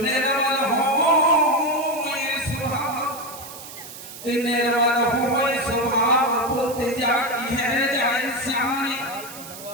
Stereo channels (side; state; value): right; noise; hiss, 14 dB below the sound